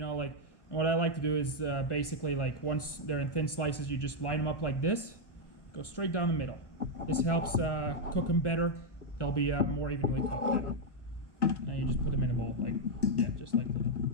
like, what I like to do is basically, like, once they're in thin slices, you just line them up like this. Go straight down the middle. This helps cook them better. They'll be more evenly cooked then. Now you just put them in a bowl, like, yeah, just like that.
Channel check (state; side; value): late; right; 1.3 ms